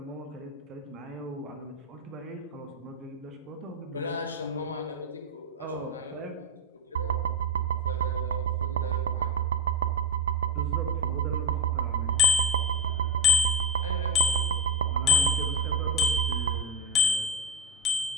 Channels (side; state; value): both; normal; correlation 0.10